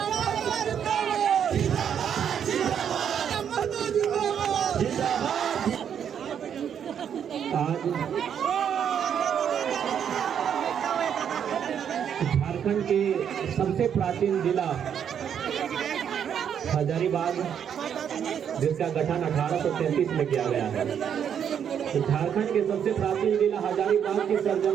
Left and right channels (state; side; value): quieter; left; 8.4 dB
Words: आज झारखंड के सबसे प्राचीन जिला हजारीबाग, जिसका गठन 1833 में किया गया है। तो झारखंड के सबसे प्राचीन जिला हजारीबाग की